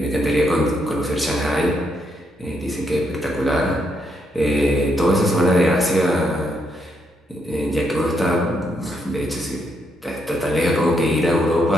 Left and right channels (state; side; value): normal; both; correlation 0.77